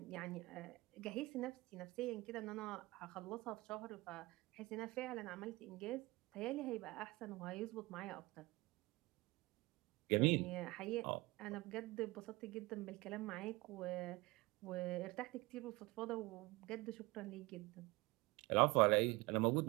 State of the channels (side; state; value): left; quieter; 22.4 dB